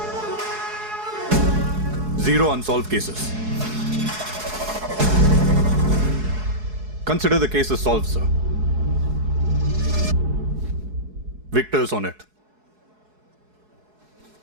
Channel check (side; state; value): left; late; 4.7 ms